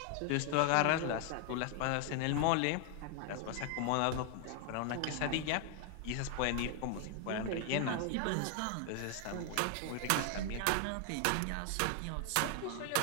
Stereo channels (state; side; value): different; both; correlation 0.00